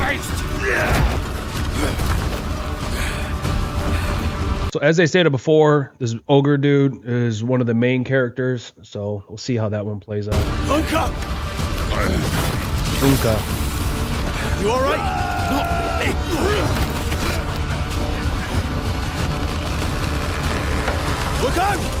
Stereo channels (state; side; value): identical; both; correlation 1.00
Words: So as I stated before, this ogre dude is one of the main characters, so we'll see how that one plays out. Unka! Unka. You alright? Look out!